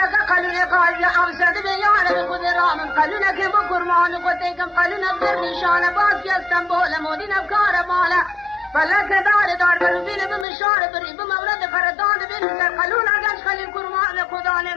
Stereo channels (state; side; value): drops out; right; at 10.5 s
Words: نفسك قالوا قال أوسد بيانا بخذ رامن قالوا لك بكرمان قتيكم قالوا نبذر نشانة باس يا اسطنبول مودينا بكارة مالا فلك دار بلوبين بمشارة بريب مولد فردان بنسر قالوا لك خلي الكرمان خدان